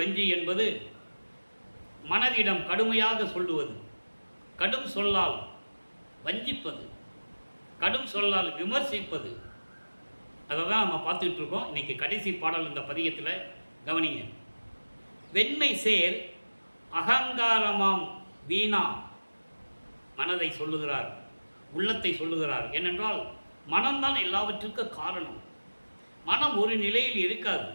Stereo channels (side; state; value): both; inverted; correlation -1.00